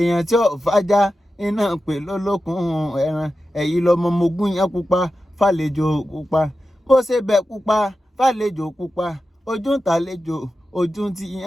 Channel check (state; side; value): normal; both; correlation 0.92